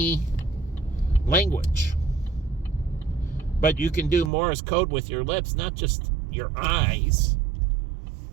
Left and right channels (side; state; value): left; drops out; at 4.3 s